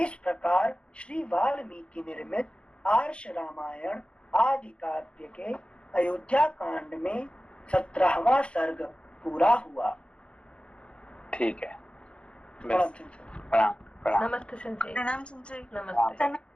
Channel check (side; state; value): right; late; 0.057 ms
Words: प्रकार श्री वाल्मीकि निर्मित आर्ष रामायण आदि काव्य के अयोध्या कांड में 17वां सर्ग पूरा हुआ। ठीक है। प्रणाम प्रणाम। नमस्ते संजय। प्रणाम संजय। नमस्ते।